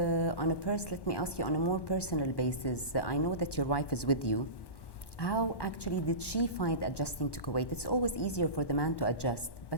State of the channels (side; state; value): right; late; 1.1 ms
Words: me ask you on a more personal basis. I know that your wife is with you. How actually did she find adjusting to Kuwait? It's always easier for the man to adjust,